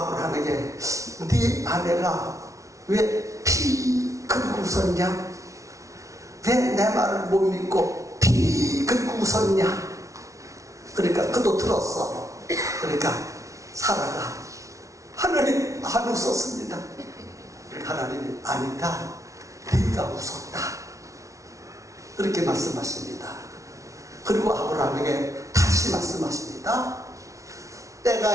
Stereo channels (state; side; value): late; left; 0.15 ms